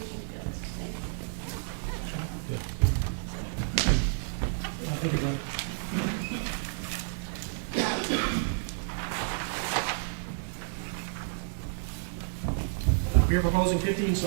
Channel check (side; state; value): left; silent; 57 dB below the other